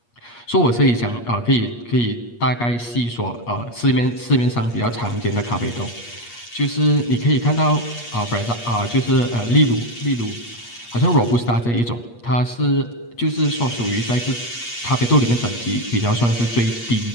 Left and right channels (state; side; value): late; right; 8.4 ms